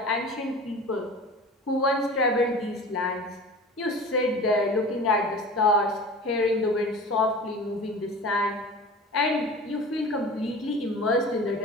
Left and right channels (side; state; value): both; normal; correlation 0.37